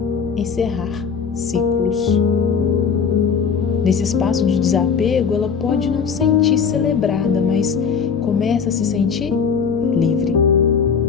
encerrar ciclos. Nesse espaço de desapego, ela pode não sentir celebrada, mas começa a se sentir livre.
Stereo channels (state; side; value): quieter; right; 6.2 dB